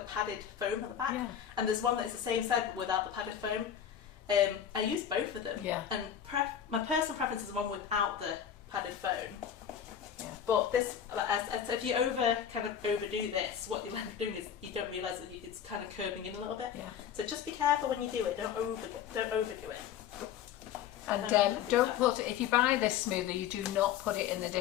a padded foam at the back. Yeah. And there's one that is the same size but without the padded foam. I use both of them. Yeah. And my personal preference is the one without the padded foam. Yeah. But this, if you overdo this, what you'll end up doing is you don't realise that it's kind of curving in a little bit. Yeah. So just be careful when you do it. Don't overdo it. And don't put it, if you buy this smoother, you do not put it in the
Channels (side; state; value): right; quieter; 9.1 dB